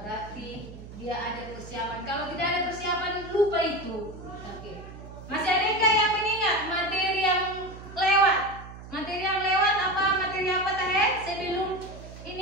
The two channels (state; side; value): noise; right; hum, 14 dB below the sound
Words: dia ada persiapan. Kalau tidak ada persiapan, lupa itu. Oke. Masih ada yang mengingat materi yang lewat? Materi yang